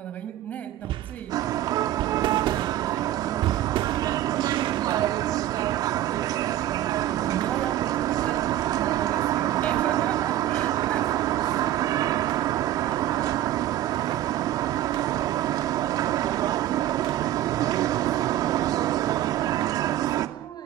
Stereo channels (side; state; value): left; quieter; 13.1 dB